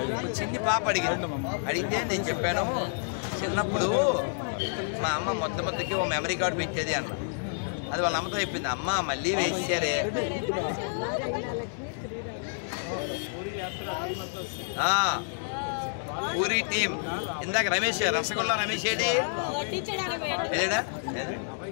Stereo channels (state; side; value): silent; right; digital silence